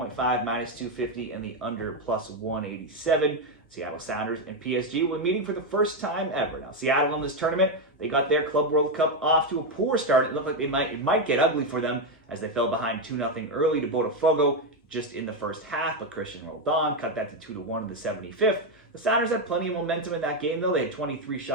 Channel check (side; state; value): both; normal; correlation 0.06